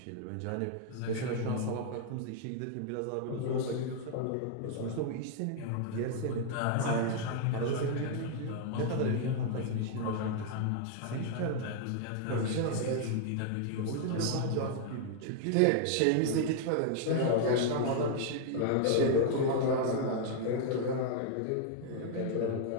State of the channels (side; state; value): both; different; correlation 0.00